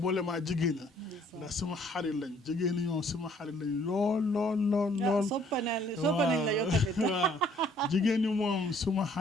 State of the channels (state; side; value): normal; both; correlation 0.61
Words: maa jigéen ñi ndax suma xarit lañ jigéen ñi ñoom suma xarit lañ lool waaw jigéen ñi moom suma